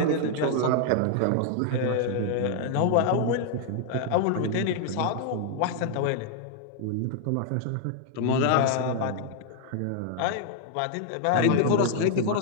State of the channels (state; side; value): different; both; correlation 0.00